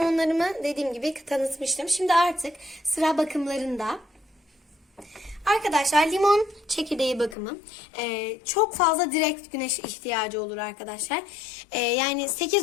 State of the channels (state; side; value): drops out; right; at 7.4 s